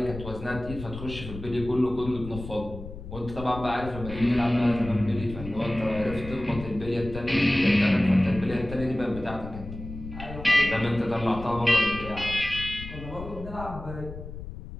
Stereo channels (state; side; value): noise; left; rumble, 11 dB below the sound